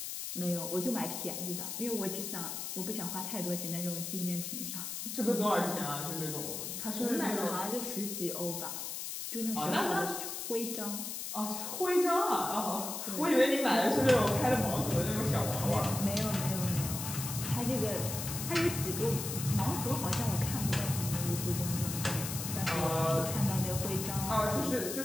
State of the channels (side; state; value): left; noise; hiss, 5 dB below the sound